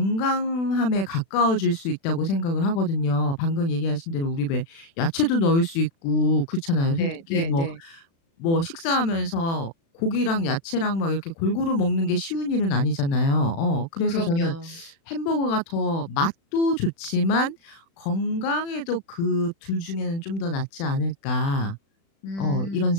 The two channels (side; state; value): right; late; 36 ms